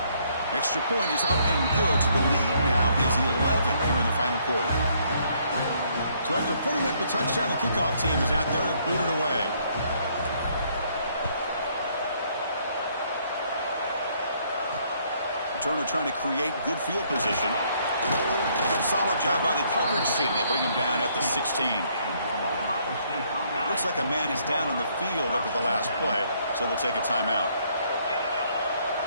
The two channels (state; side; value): inverted; both; correlation -0.67